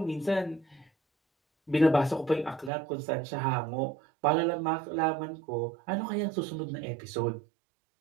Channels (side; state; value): left; drops out; at 2.7 s